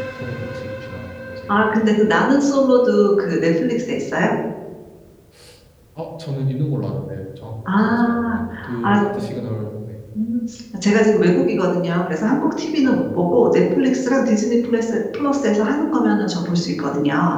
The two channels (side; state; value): both; identical; correlation 1.00